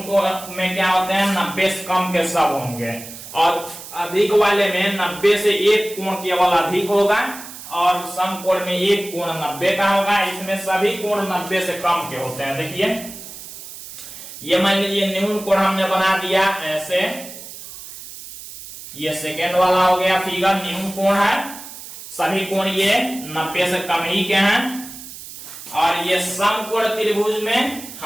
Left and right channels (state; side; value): noise; right; hiss, 14 dB below the sound